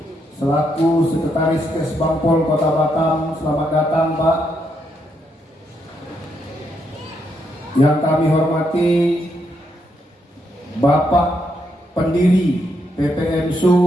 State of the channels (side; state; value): both; normal; correlation 0.78